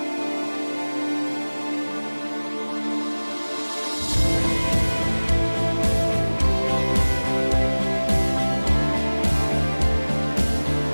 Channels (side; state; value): both; inverted; correlation -1.00